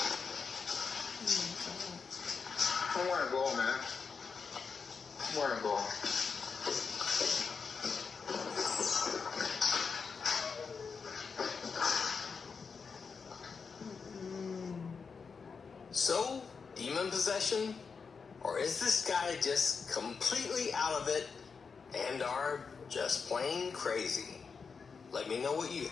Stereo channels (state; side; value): quieter; right; 5.4 dB